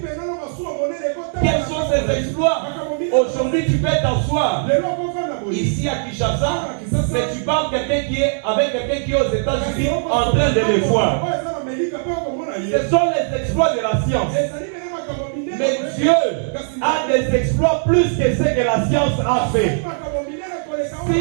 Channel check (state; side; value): silent; left; digital silence